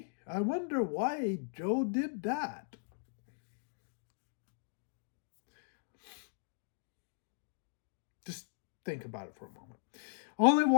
I wonder why Joe did that. Just think about it for a moment. Only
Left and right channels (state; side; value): silent; right; digital silence